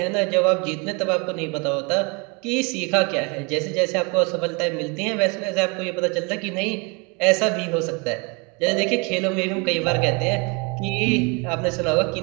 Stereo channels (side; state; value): left; quieter; 31.1 dB